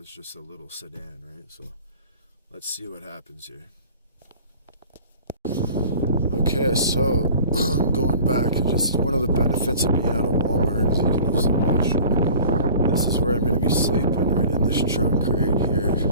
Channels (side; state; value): both; inverted; correlation -0.45